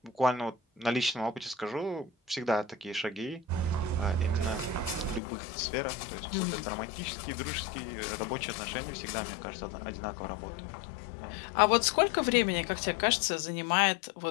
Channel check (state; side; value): drops out; right; at 5.2 s